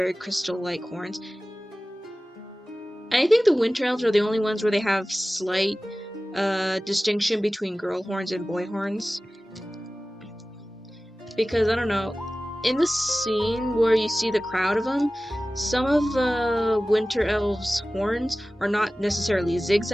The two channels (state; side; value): normal; both; correlation 0.97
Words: crystal-like horns. And I think the winter elves are the only ones where they have slight distinction between girl horns and boy horns. Because, I don't know, in the scene where you see the crowd of them, some of the winter elves' horns are not necessarily